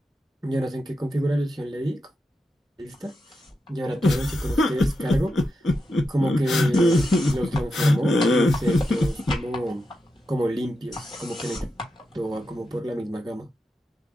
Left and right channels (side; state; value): both; normal; correlation 0.87